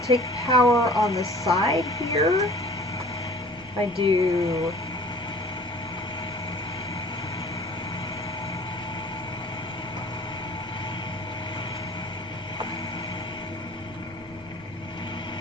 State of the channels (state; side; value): normal; both; correlation 0.47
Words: take power on the side here? If I do